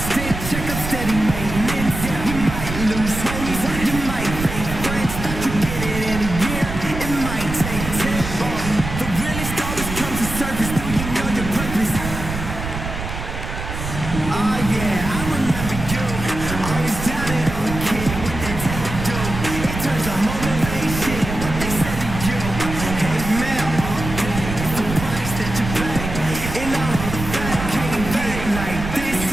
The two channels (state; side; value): noise; right; rumble, 6 dB below the sound